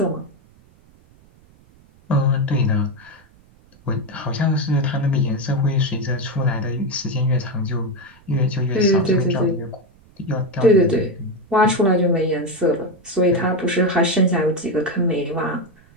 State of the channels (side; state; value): right; noise; rumble, 29 dB below the sound